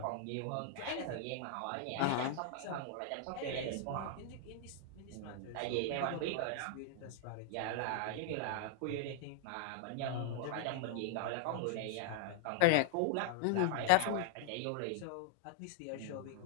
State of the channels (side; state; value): both; different; correlation 0.00